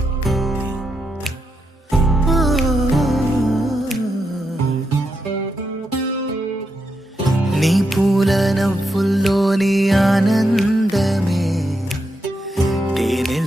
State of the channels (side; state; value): both; normal; correlation 0.83